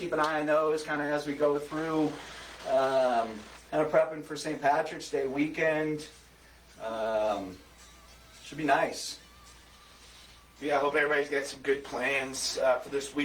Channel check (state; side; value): identical; both; correlation 1.00